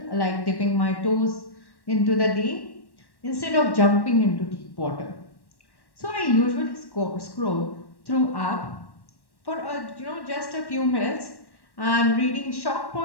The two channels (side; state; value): right; late; 1.1 ms